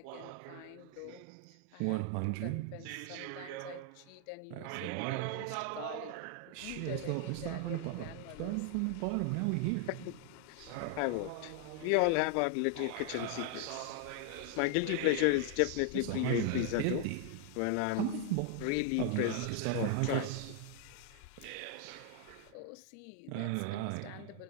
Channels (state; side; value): different; both; correlation 0.00